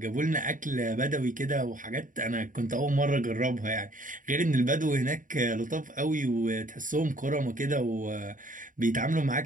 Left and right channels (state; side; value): late; left; 0.38 ms